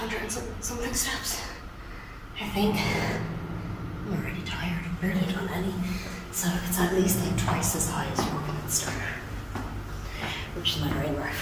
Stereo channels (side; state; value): both; identical; correlation 1.00